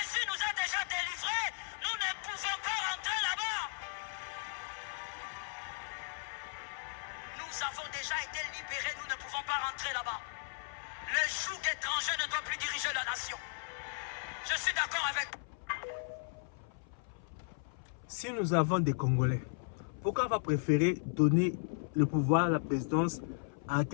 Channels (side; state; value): right; silent; 54 dB below the other